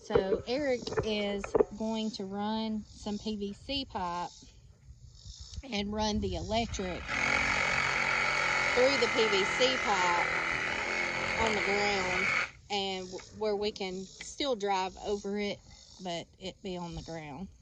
So Eric is going to run some PVC pipe and run the electric through the PVC pipe on the ground, and where we can still drive over it, but it be on the ground.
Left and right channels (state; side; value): identical; both; correlation 1.00